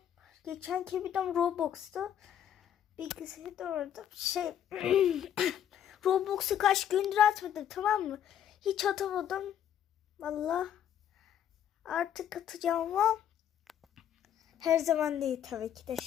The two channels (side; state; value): right; quieter; 9.9 dB